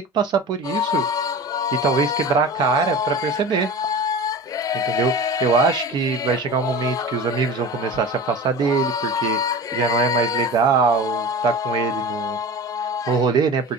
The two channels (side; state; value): both; normal; correlation 0.34